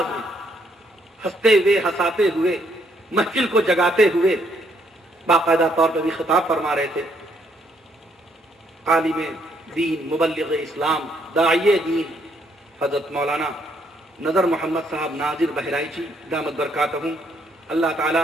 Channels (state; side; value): normal; both; correlation 0.71